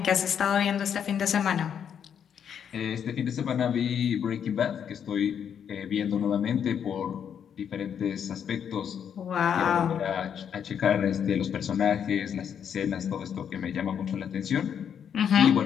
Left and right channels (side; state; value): right; quieter; 8.2 dB